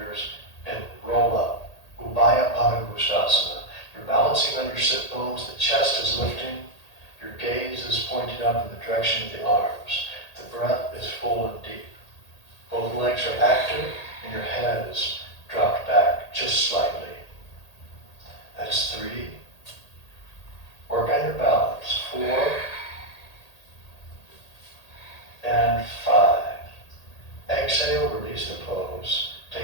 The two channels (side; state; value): right; late; 1.8 ms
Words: and roll up. Ubaya Pada Gustasana. You're balancing on your sit bones, the chest is lifting, your gaze is pointing up in the direction of the arms. The breath is full and deep. Both legs are active, and your head is dropped back just slightly. That's 3. Work on your balance. 4 and 5. Exhale, release the pose.